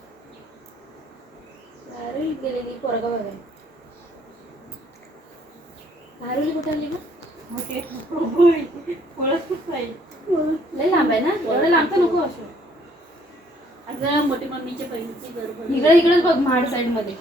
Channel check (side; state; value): both; normal; correlation 0.64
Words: गेलेली पोरगा बघाय. नारुली कुठे आली मग? ओके. ओळखच नाही. लय लांब आहे ना? एवढं लांब तर नको असं. आता मोठी मम्मीच्या बहिणीची घर इकडे इकडेच बघ महाड साईड मध्ये.